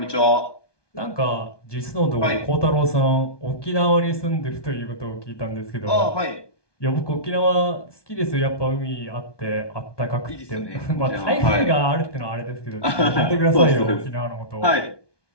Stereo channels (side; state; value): right; late; 1.2 ms